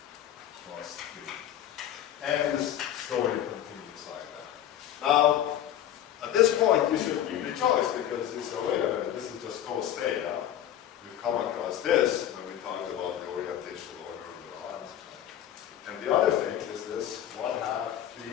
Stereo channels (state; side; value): quieter; right; 11.2 dB